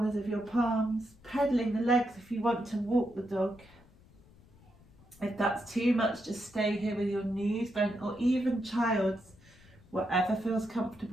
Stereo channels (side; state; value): left; noise; rumble, 26 dB below the sound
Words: of your palms, pedaling the legs if you want to walk the dog. If that's too much, just stay here with your knees bent, or even child's, whatever feels